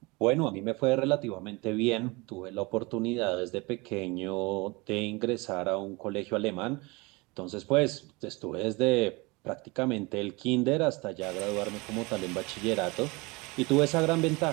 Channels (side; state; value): left; quieter; 25.4 dB